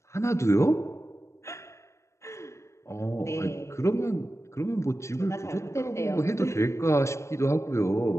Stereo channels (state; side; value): late; right; 0.14 ms